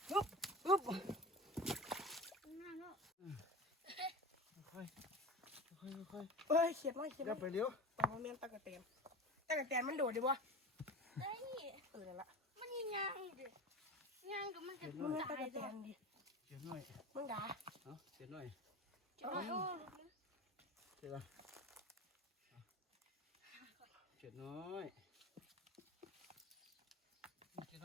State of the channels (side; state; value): both; normal; correlation 0.32